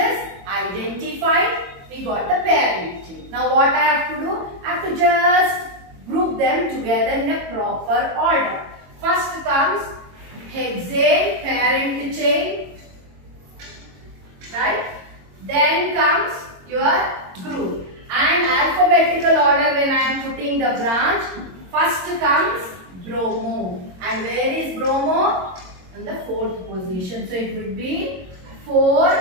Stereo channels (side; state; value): left; late; 22 ms